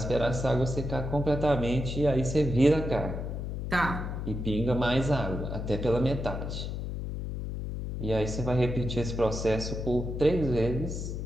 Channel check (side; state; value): left; noise; hum, 4 dB below the sound